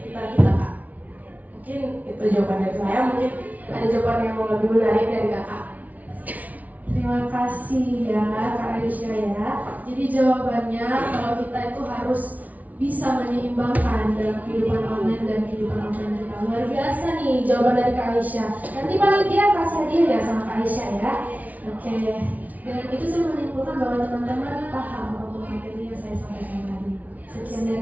kita, Kak. Mungkin itu jawaban dari saya, mungkin ada jawaban yang lebih menarik dari kakak. Terima kasih ya Kak Aisyah ya. Jadi jawabannya kalau kita itu harus bisa menyeimbangkan dalam kehidupan online dan kehidupan offline kita. Luar biasa nih jawaban dari Kak Aisyah. Nanti panitia kasih hadiah ya sama Kak Aisyah ya. Oke. Dan itu saya menyimpulkan bahwa teman-teman paham untuk materi yang saya sampaikan tadi. Sekian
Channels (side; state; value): left; late; 0.073 ms